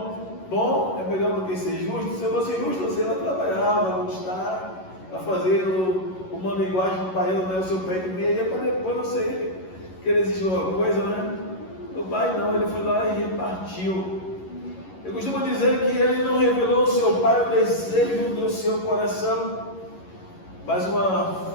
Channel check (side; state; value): right; late; 11 ms